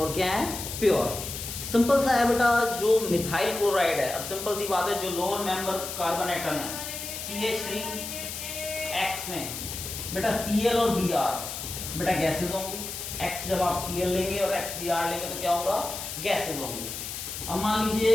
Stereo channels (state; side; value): noise; left; hiss, 7 dB below the sound